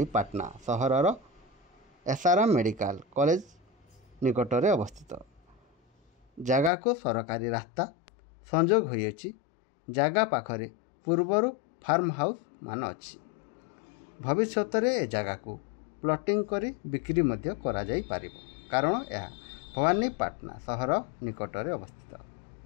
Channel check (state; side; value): drops out; right; at 6.7 s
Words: सहरर एसआरएम मेडिकल कॉलेज निकटरे अवस्थित। जगह को सरकारी रास्ता संजोग होइछि। जगह पाखरे पूर्वर फार्म हाउस मान अच्छी। भविष्य में ए जगह को प्लॉटिंग करी बिक्री मध्य करा जाई पारिबो, कारण यह भवानीपाटना सहर निकटरे अवस्थित।